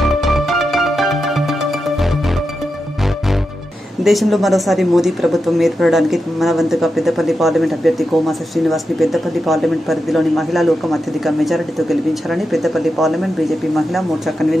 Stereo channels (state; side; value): normal; both; correlation 0.89